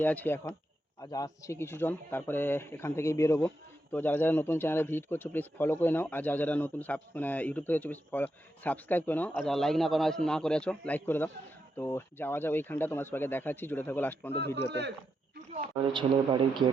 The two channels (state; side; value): normal; both; correlation 0.84